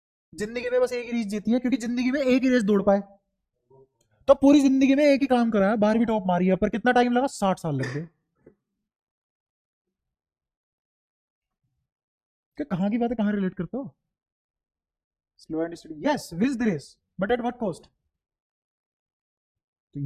जिंदगी में बस एक ही रेस जीती है, क्योंकि जिंदगी में एक ही रेस दौड़ पाए। तो पूरी जिंदगी में एक ही काम करा है, 12वीं टॉप मारी है, पर कितना टाइम लगा? 60 साल लग गए। कि कहाँ की बात है, कहाँ रिलेट करते हो? Slow and steady, yes, wins the race, but at what cost? तो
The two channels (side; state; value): both; identical; correlation 1.00